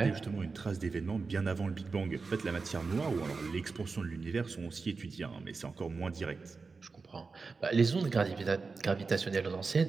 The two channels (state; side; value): quieter; left; 4.4 dB